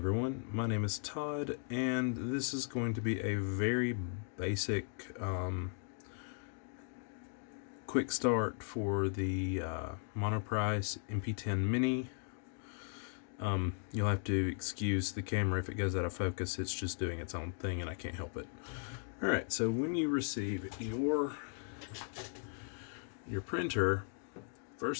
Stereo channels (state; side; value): silent; right; 53 dB below the other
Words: my name is Todd, and this is going to be a very basic quick start for the Monoprice MP10 Mini. You'll have to excuse the camera if it goes out of focus, it's just doing its own thing and I can't help it. Alright, so when you receive your printer,